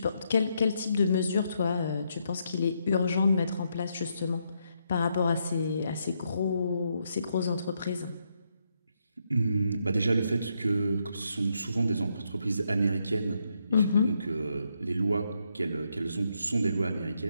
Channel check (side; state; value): both; inverted; correlation -0.78